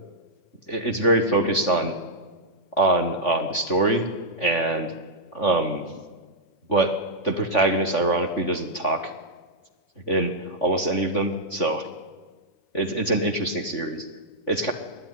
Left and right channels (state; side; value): late; right; 3.5 ms